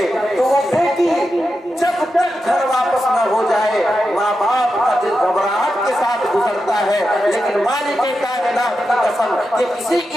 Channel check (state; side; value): normal; both; correlation 0.89